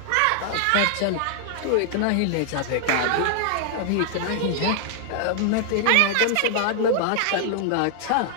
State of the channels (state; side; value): different; both; correlation 0.00